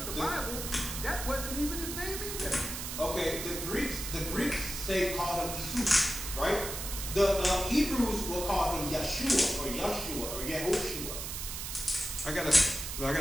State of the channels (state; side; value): noise; right; hiss, 6 dB below the sound